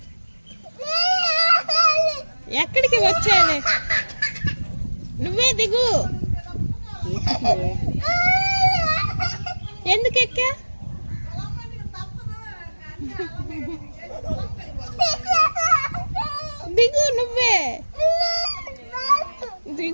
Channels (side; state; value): both; inverted; correlation -1.00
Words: ఎక్కడికి వచ్చాను? నువ్వే దిగు. ఎందుకు ఎక్కా? దిగు, నువ్వే